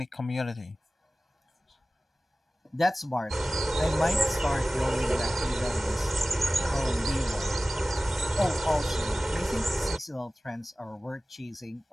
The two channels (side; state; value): both; normal; correlation 0.97